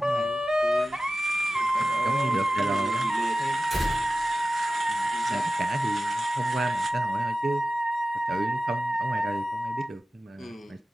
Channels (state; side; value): normal; both; correlation 0.95